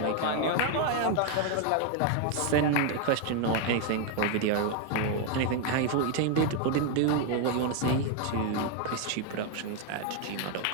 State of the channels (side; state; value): both; different; correlation 0.01